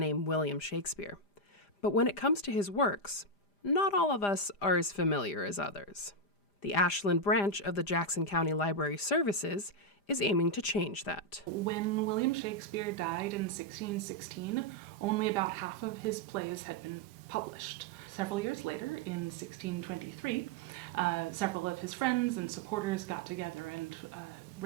William Shakespeare. But when it comes to his works, not all of us are as familiar as others. The Ashland branch of the Jackson County Library Services is aiming to change that. When William Shakespeare died in 1616, only about half of his plays had been published. Several years later, in 1623, several of his friends and supporters got together and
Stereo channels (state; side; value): late; right; 5.0 ms